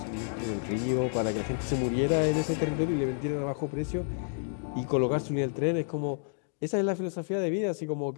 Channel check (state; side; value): silent; right; digital silence